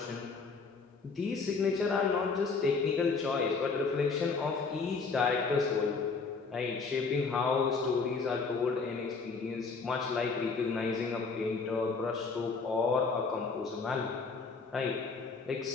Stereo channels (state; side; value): quieter; right; 4.6 dB